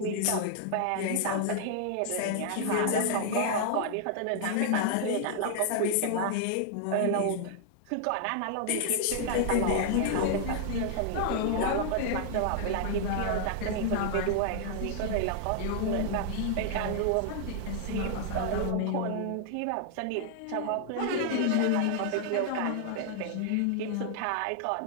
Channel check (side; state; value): both; different; correlation -0.01